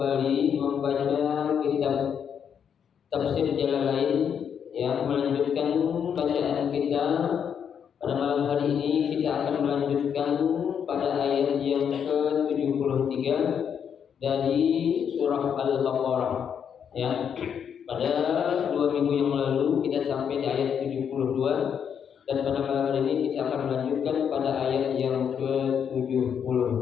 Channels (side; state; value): right; quieter; 7.8 dB